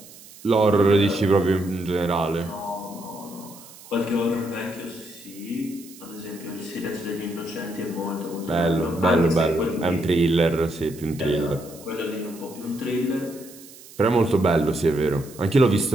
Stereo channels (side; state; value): right; noise; hiss, 20 dB below the sound